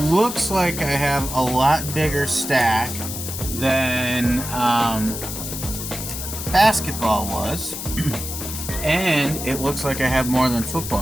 looks like I have a lot bigger stack than basketball was. And it looks like I have more than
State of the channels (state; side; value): noise; left; hiss, 7 dB below the sound